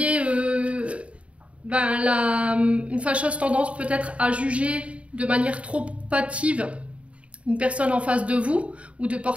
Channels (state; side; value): late; left; 0.063 ms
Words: une fâcheuse tendance peut-être à juger de manière trop hâtive une personne en face de vous, ou de